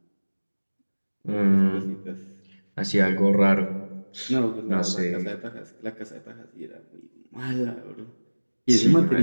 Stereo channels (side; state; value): both; inverted; correlation -1.00